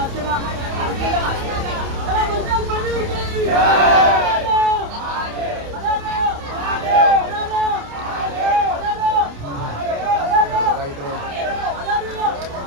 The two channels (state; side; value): late; left; 28 ms